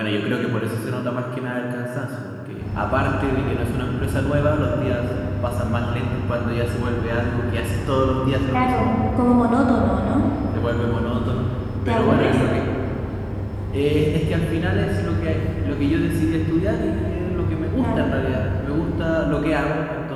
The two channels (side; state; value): both; identical; correlation 1.00